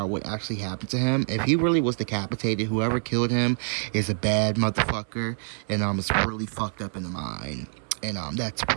what actually happened to him. If he really was decapitated, whoever killed him is a bad motherfucker, and it's really fucked up in the mind. And that's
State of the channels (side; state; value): left; silent; 59 dB below the other